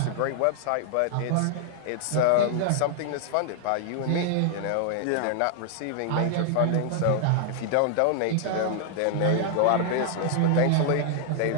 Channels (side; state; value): both; different; correlation 0.00